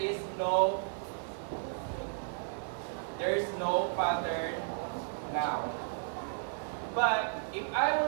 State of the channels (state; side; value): silent; left; digital silence